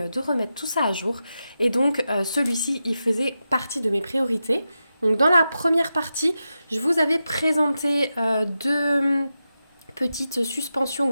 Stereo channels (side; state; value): both; inverted; correlation -0.90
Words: de remettre tout ça à jour. Et donc celui-ci, il faisait partie de mes priorités. Donc dans la première partie, je vous avais présenté deux petites suspensions